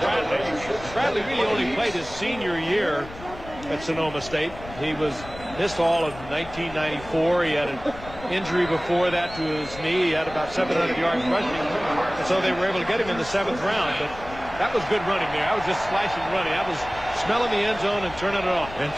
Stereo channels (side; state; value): left; noise; rumble, 15 dB below the sound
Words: Bradley. Bradley really only played his senior year at Sonoma State. He missed all of 1994. He had an injury before that to his knee. He had about 700 yards rushing. And so they were able to get him in the 7th round. But that was good running there. I was just slashing running. I was smelling the end zone and turning it off. And